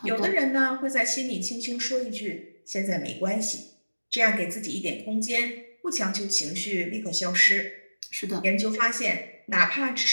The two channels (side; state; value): both; inverted; correlation -1.00